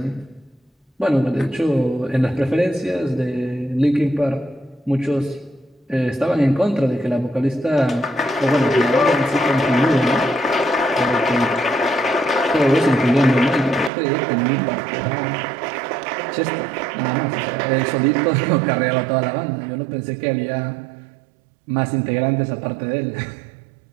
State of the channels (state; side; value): drops out; left; at 13.9 s